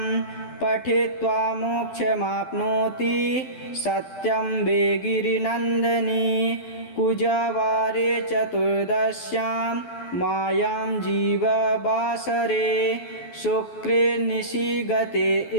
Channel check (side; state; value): right; late; 12 ms